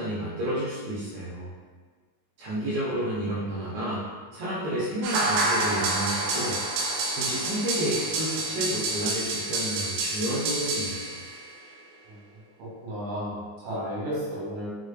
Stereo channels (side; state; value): left; late; 19 ms